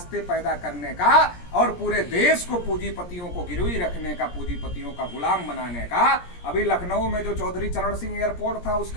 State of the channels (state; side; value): late; right; 17 ms